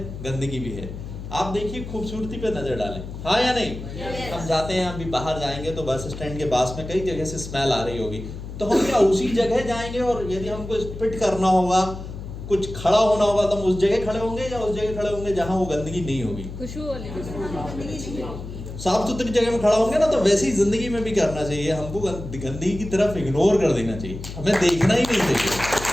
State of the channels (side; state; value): left; noise; hum, 10 dB below the sound